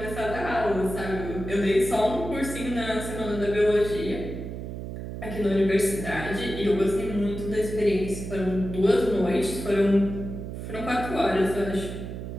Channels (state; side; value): noise; right; hum, 8 dB below the sound